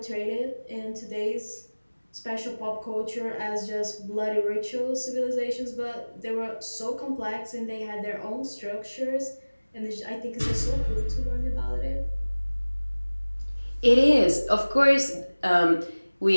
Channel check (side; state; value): both; inverted; correlation -1.00